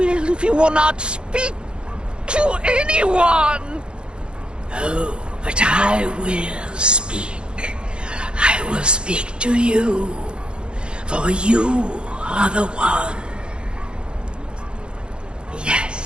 if you will not speak to anyone? Oh, but I will speak. I will speak to you. For you are the one.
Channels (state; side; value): late; left; 0.054 ms